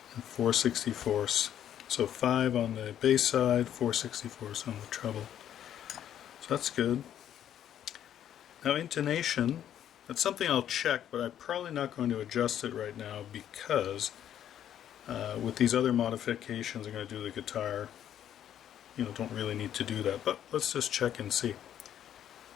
and 4/64. So 5 on the bass side, 4/64 on the treble. So that's good. Now intonation, that's something I'll check, but I'm probably not going to adjust it right now because with these other modifications I'm going to do the guitar, don't really need to do that. But let's just check and see.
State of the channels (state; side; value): quieter; right; 10.4 dB